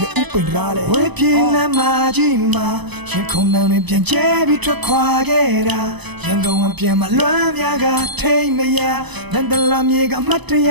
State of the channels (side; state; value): left; late; 0.99 ms